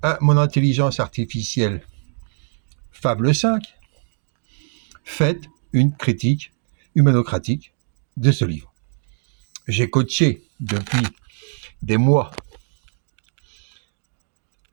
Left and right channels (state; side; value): silent; left; 64 dB below the other